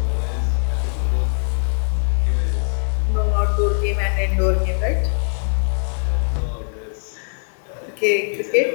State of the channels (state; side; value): silent; right; digital silence